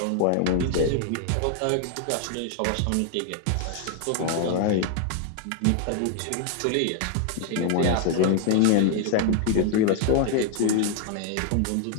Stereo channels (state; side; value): different; both; correlation 0.00